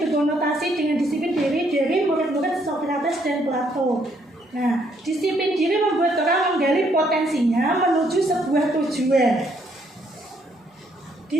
berkonotasi dengan disiplin diri dari murid-murid Socrates dan Plato. Nah, disiplin diri membuat orang menggali potensinya menuju sebuah tujuan.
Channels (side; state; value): both; normal; correlation 0.70